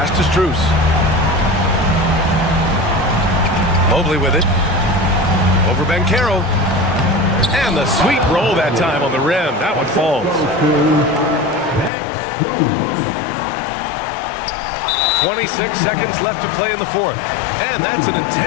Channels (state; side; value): drops out; right; at 11.9 s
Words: to Strus. Mobley with it. Over Banchero. And the sweet roll that time on the rim. That one falls. 26 seconds left to play in the fourth. And that's an